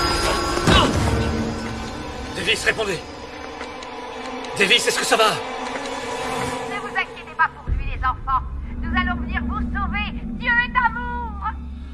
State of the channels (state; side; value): identical; both; correlation 1.00